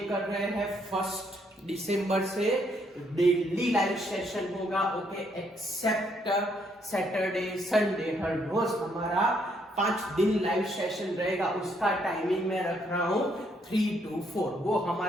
कर रहे हैं। 1 दिसंबर से डेली लाइव सेशन होगा। ओके, एक्सेप्ट सैटरडे संडे, हर रोज हमारा 5 दिन लाइव सेशन रहेगा। उसका टाइमिंग मैं रख रहा हूं 3 to 4। वो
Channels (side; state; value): both; normal; correlation 0.71